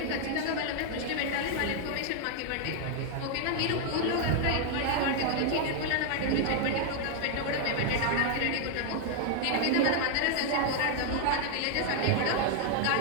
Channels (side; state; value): both; different; correlation 0.00